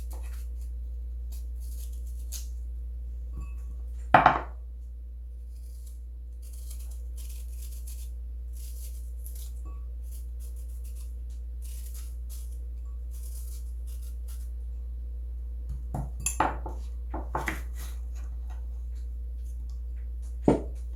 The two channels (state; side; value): identical; both; correlation 1.00